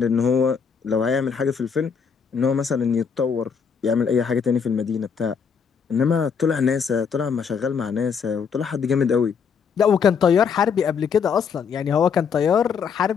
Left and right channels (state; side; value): quieter; right; 6.4 dB